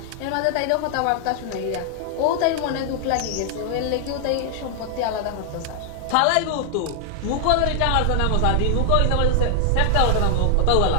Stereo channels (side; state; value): both; different; correlation 0.00